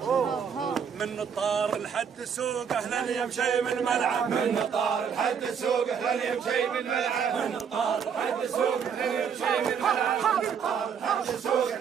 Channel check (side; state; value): left; quieter; 7.1 dB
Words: من طار لحد السوق. اهلا يا مشي من الملعب من طار لحد السوق. اهلا يا مشي من الملعب من طار لحد السوق. اهلا يا مشي من الملعب من طار لحد السوق.